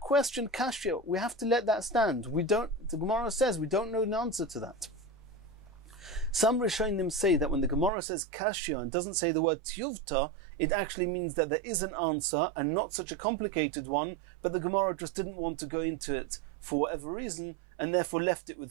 question, kashya, we have to let that stand. The Gemara says we don't know the answer to that. Some Rishonim say that when the Gemara says kashya and doesn't say the word tiyuvta, it actually means that there is an answer and not such a complicated one, but the Gemara just didn't want to go into it for whatever reason and therefore left it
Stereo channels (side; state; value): left; drops out; at 7.9 s